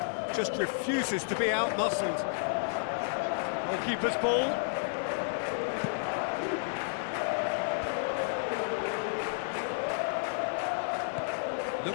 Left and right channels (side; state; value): right; silent; digital silence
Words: just refuses to be out-muscled. Goalkeeper's ball.